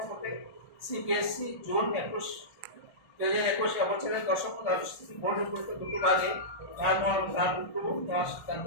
সিবিএসসি জুন 2021 বছরের দশম দ্বাদশ শ্রেণী বোর্ড পরীক্ষা দুটো ভাগে নেওয়ার সিদ্ধান্ত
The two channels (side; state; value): right; late; 1.4 ms